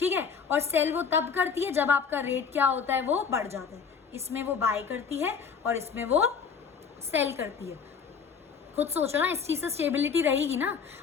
है, और सेल वो तब करती है जब आपका रेट क्या होता है? वो बढ़ जाता है। इसमें वो बाय करती है और इसमें वो सेल करती है। खुद सोचो ना, इस चीज से स्टेबिलिटी रहेगी ना।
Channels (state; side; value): quieter; right; 6.2 dB